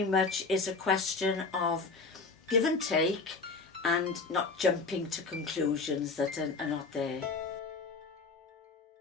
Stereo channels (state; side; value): quieter; right; 4.2 dB